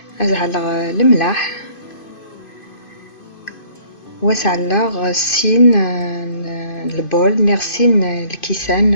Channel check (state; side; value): late; right; 2.5 ms